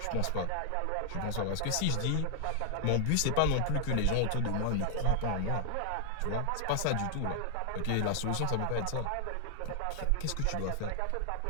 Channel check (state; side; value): different; both; correlation 0.00